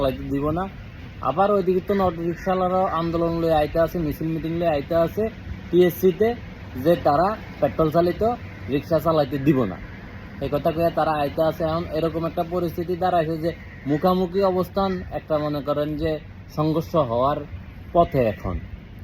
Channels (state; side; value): identical; both; correlation 1.00